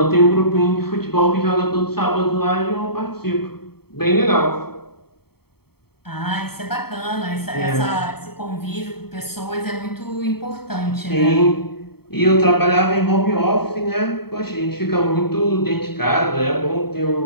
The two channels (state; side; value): late; right; 0.96 ms